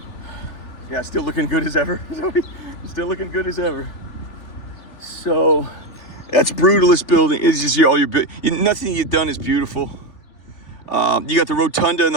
Yeah, still looking good as ever. Still looking good as ever. So that's brutalist building. It's just all your nothing you've done is beautiful. You got the rotunda and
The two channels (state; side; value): late; right; 3.4 ms